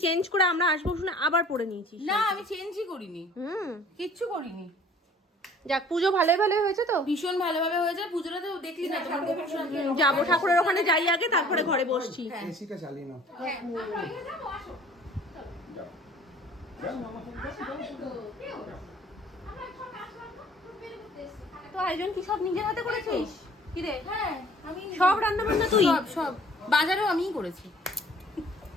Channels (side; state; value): both; normal; correlation 0.52